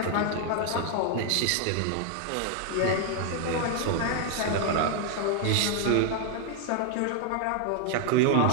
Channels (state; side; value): different; both; correlation 0.00